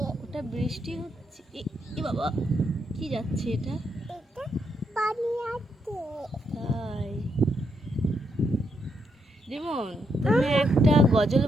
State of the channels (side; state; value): both; normal; correlation 0.79